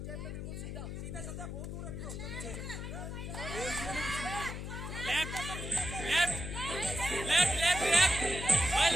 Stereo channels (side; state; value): left; noise; hum, 6 dB below the sound